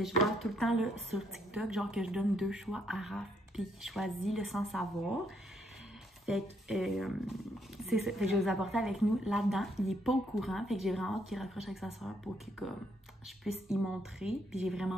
vois tout le temps là, sur TikTok, genre que je donne 2 choix à Raph, puis qu'il choisit là, sans savoir. Fait que c'est ça, fait que je vais vous apporter avec nous là-dedans. Il est pas au courant, fait que j'ai vraiment hâte qu'il raccroche avec sa soeur pour que comme je puisse y montrer. Puis j'ai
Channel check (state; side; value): normal; both; correlation 0.72